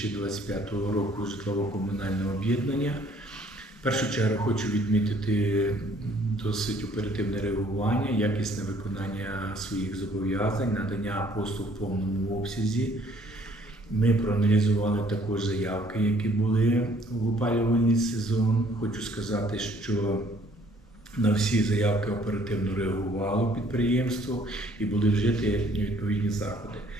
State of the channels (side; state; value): both; normal; correlation 0.60